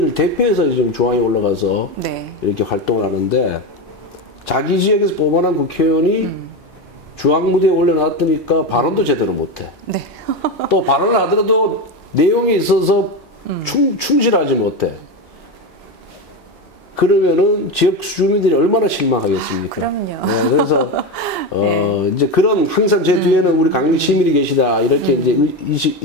대표해서 지금 중앙에 올라가서 이렇게 활동을 하는데 자기 지역에서 뽑아낸 국회의원이 중앙무대에 올려놨으니까 발언도 제대로 못해. 또 발언을 하더라도 내용에 있어서 충실하지 못해. 그러면은 지역 주민들이 얼마나 실망하겠습니까? 그럼요. 그래서 이제 그런 항상 제 뒤에는 우리 강릉 시민이 계시다 이렇게 이제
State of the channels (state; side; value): normal; both; correlation 0.17